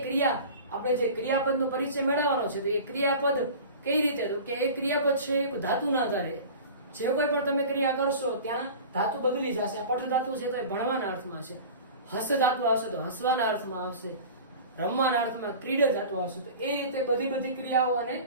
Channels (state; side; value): inverted; both; correlation -0.37